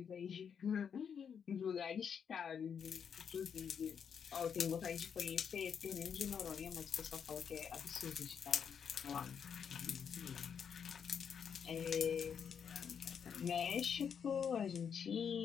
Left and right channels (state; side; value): quieter; right; 7.3 dB